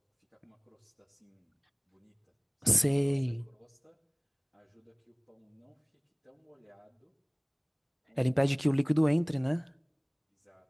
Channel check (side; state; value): both; identical; correlation 1.00